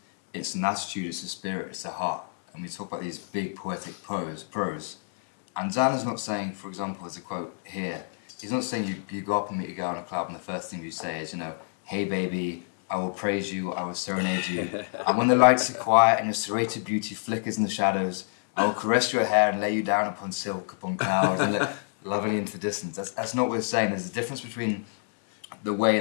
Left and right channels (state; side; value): silent; right; 60 dB below the other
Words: an attitude, it's a spirit, it's a heart. And we talk about these big poetic prose. And Zan is not saying, for example, there's a quote here, he's not saying you go up and meet a girl in a club and the first thing you say is, you know, hey baby, I will praise you, I will serenade you. And when the lights are quiet and your serrated beauty flickers in the shadows, I will caress your hair and lay you down upon silk, upon clouds, and look lovingly into the distance. That's not what we're saying. There's a difference between the way